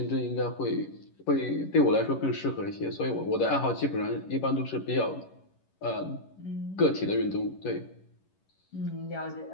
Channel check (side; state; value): right; late; 11 ms